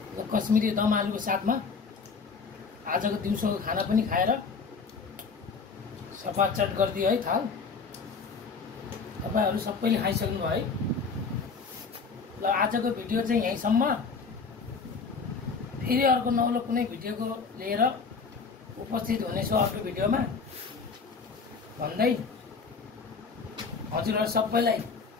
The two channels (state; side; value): quieter; right; 5.0 dB